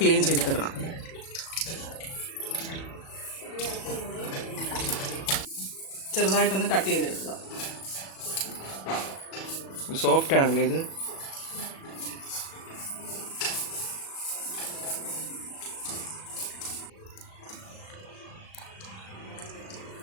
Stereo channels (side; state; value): right; late; 37 ms